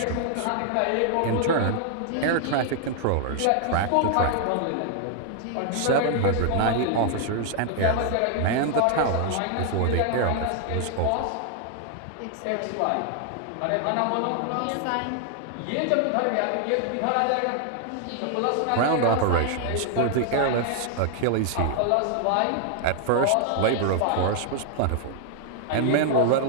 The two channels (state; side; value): different; both; correlation 0.00